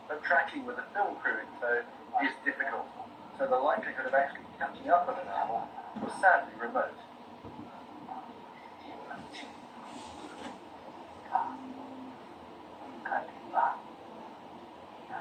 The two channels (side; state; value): both; identical; correlation 1.00